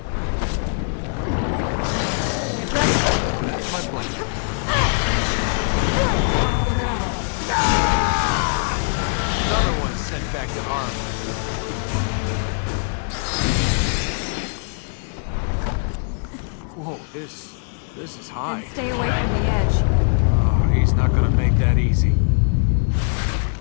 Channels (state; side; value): silent; right; digital silence